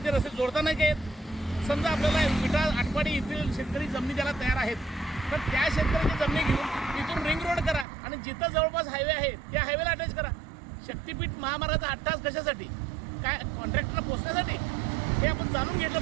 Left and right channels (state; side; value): drops out; left; at 7.9 s